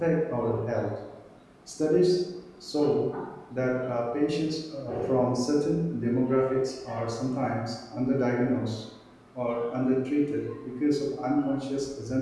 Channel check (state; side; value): identical; both; correlation 1.00